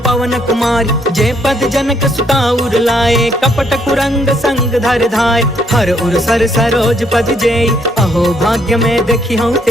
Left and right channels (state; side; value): normal; both; correlation 0.70